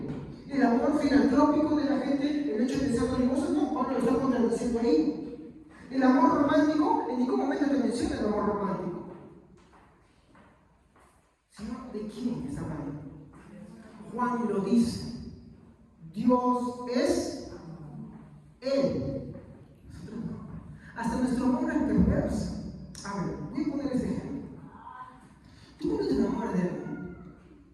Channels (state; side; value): identical; both; correlation 1.00